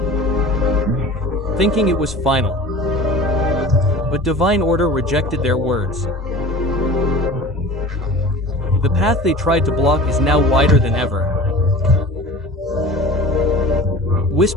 thinking it was final. But divine order rejected their words. The path they tried to block is now wider than ever.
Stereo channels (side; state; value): both; normal; correlation 0.39